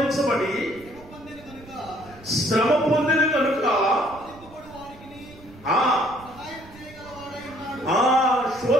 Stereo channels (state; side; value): noise; right; rumble, 21 dB below the sound